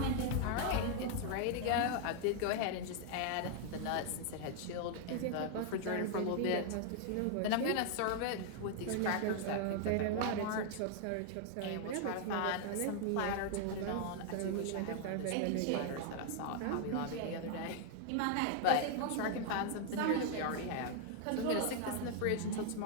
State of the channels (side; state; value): both; different; correlation 0.00